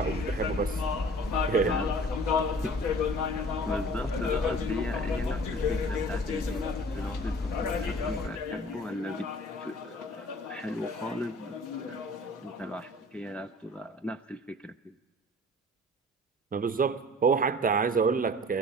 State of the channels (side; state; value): both; normal; correlation 0.46